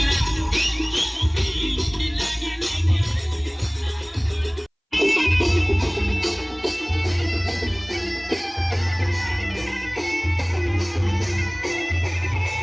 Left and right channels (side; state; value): both; identical; correlation 1.00